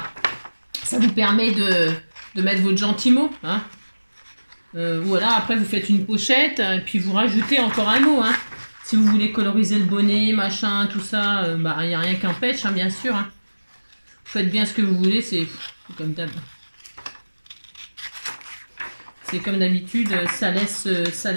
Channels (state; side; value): inverted; both; correlation -1.00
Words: Ça vous permet de mettre votre gentil mot. Hein. Voilà, après vous faites une pochette et puis vous rajoutez encore un mot. Hein. Si vous voulez coloriser le bonnet, machin, tout ça, bah il n'y a rien qu'un pêche, hein, bien sûr. Hein. Vous faites bien ce que vous voulez, c'est comme d'habitude. C'est comme d'habitude, ça laisse